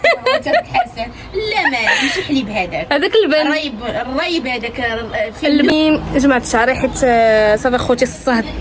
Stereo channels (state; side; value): identical; both; correlation 1.00